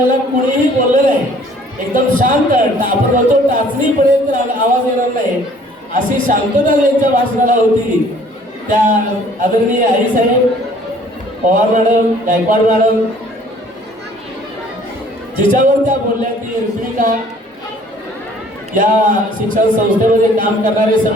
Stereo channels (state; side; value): normal; both; correlation 0.56